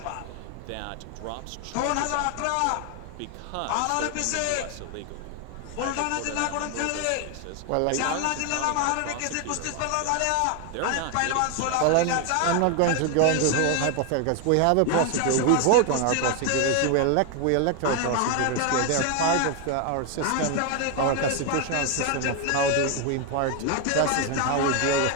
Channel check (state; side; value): different; both; correlation 0.01